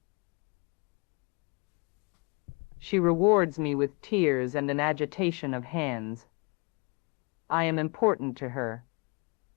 She rewards me with tears and an agitation of hands. I am important to her.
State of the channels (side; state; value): right; quieter; 31.8 dB